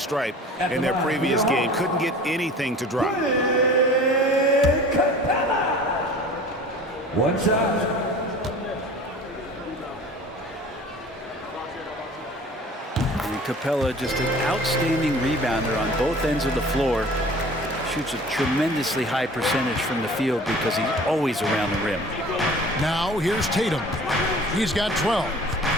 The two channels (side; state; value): both; normal; correlation 0.44